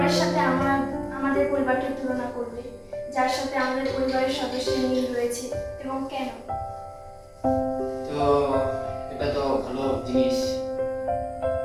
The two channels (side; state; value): both; identical; correlation 1.00